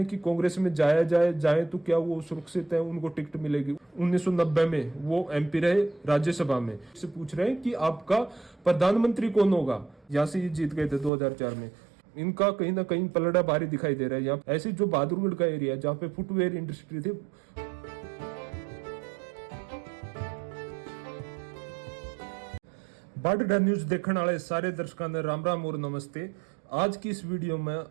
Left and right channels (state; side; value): drops out; left; at 11.1 s